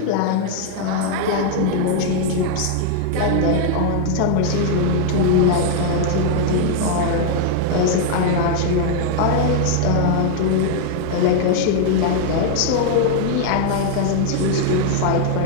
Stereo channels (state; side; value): different; both; correlation 0.00